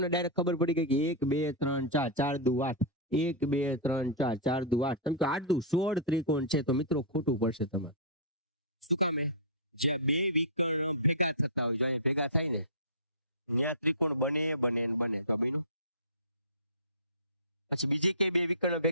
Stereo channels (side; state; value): both; normal; correlation -0.18